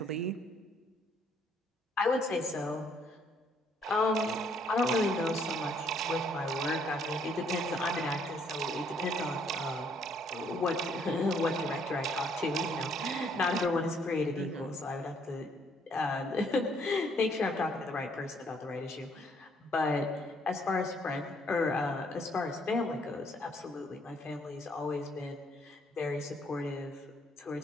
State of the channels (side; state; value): both; normal; correlation 0.66